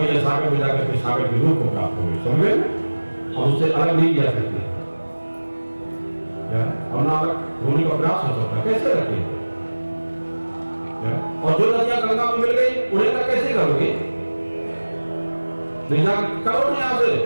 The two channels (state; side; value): inverted; both; correlation -1.00